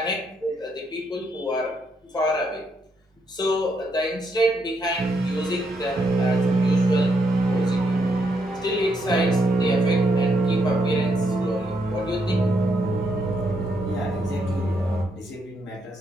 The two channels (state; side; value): normal; both; correlation 0.77